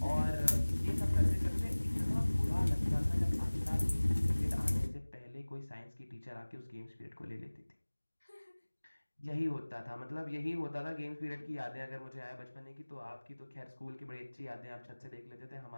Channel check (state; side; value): inverted; both; correlation -1.00